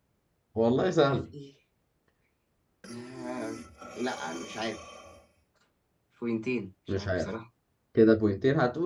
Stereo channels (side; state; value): both; identical; correlation 1.00